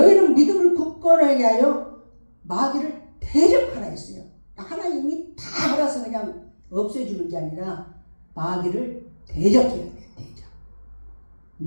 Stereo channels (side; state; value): both; inverted; correlation -1.00